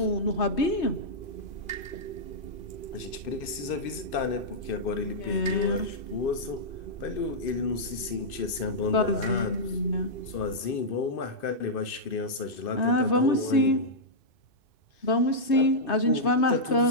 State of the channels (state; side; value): late; right; 2.6 ms